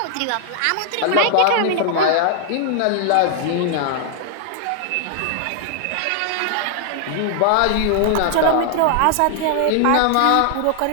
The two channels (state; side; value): different; both; correlation 0.00